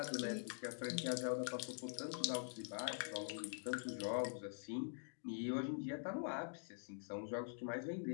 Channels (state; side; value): silent; right; digital silence